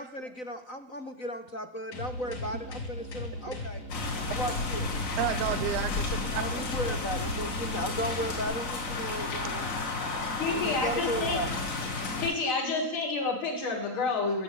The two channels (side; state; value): right; late; 3.9 ms